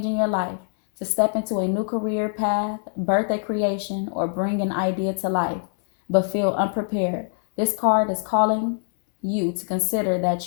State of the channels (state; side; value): silent; right; 63 dB below the other